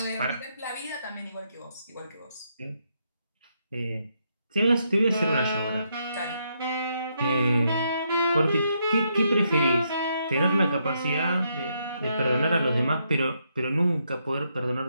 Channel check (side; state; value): both; inverted; correlation -0.77